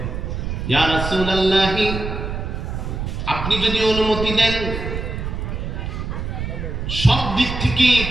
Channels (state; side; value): noise; right; rumble, 4 dB below the sound